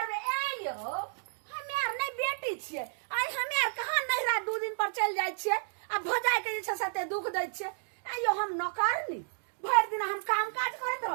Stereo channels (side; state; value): left; silent; digital silence